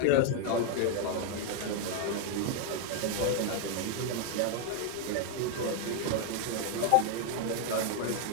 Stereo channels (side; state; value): both; different; correlation 0.01